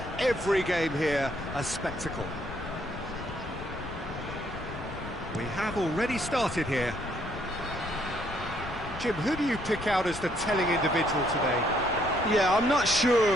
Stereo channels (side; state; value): left; noise; rumble, 11 dB below the sound